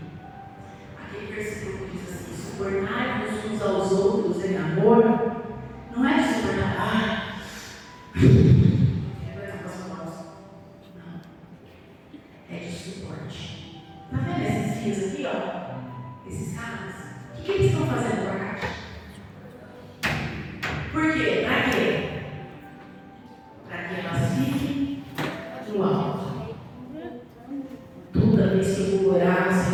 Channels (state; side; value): identical; both; correlation 1.00